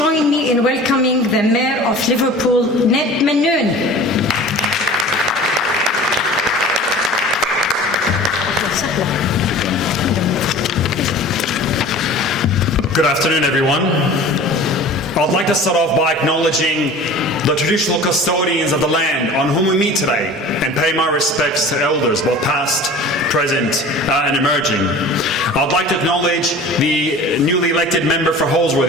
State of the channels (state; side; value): normal; both; correlation 0.41